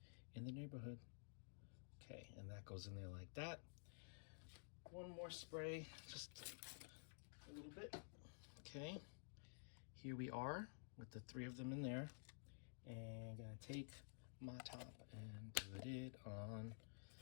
in the neighborhood. Okay, and that goes in there like that. One more spray, just a little bit. Okay, here we are with the 3 of them in there. And I'm gonna take my top and put it on.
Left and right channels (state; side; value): silent; right; digital silence